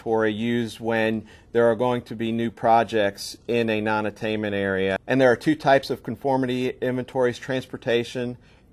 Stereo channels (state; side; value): identical; both; correlation 1.00